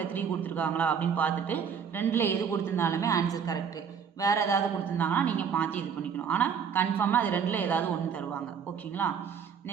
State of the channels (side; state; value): left; quieter; 7.0 dB